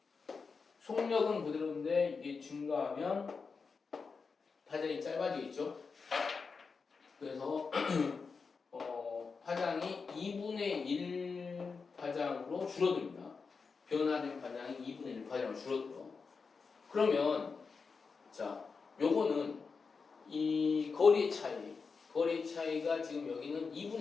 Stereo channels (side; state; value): right; quieter; 5.0 dB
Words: 속력은 그대로인데 이게 증가하면 파장이 짧아지겠죠. 그래서 파장이 2분의 1 파장으로 줄어듭니다. 변화된 파장이 2분의 1 파장으로 줄어들어. 그러면 자, 요거는 이 거리의 차이가 지금 여기는 2분의